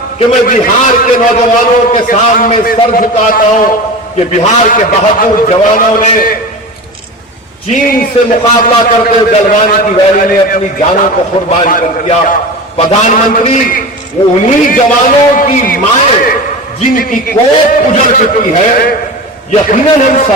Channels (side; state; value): both; normal; correlation 0.30